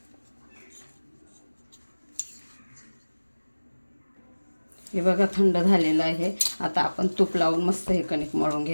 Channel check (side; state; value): both; inverted; correlation -1.00